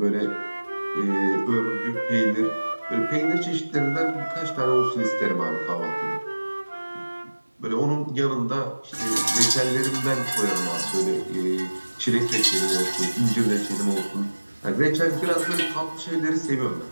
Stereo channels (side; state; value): both; inverted; correlation -1.00